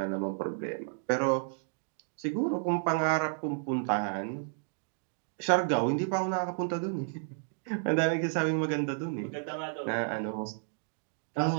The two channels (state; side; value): silent; left; digital silence